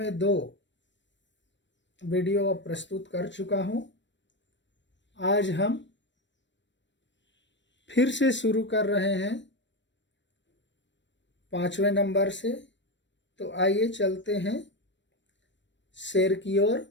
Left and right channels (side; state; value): right; late; 0.53 ms